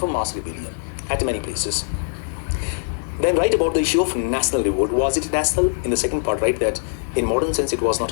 a mass rebellion at many places. Then write about the issue of national revolt. Was it national? In the second part, write that in modern sense it was not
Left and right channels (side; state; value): right; silent; 64 dB below the other